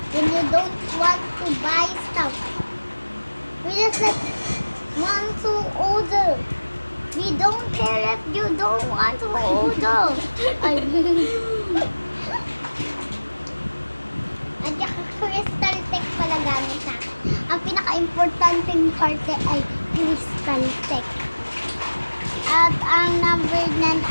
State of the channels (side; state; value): both; inverted; correlation -1.00